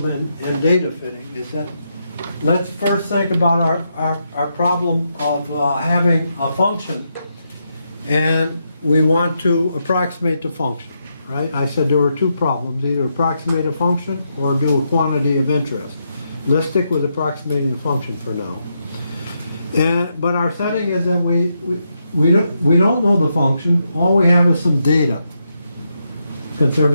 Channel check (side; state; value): both; inverted; correlation -0.82